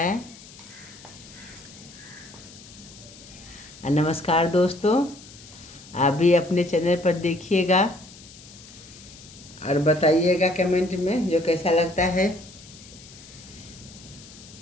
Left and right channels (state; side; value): noise; left; hiss, 19 dB below the sound